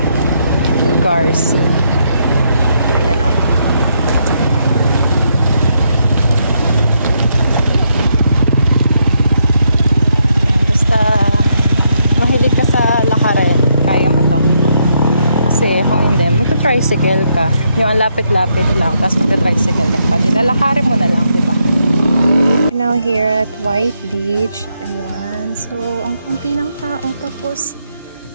lugar. Ayan o. Basta mahilig ka sa lakarin, kaya mo to. Kasi kung hindi, magta-tricycle ka. Yung lapit-lapit lang, tapos magta-tricycle ka pa. Nilalakarin mo na lang, diba? Now here at White Beach. Ayan. So, ang kunti ng tao. Tapos,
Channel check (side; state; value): both; inverted; correlation -0.77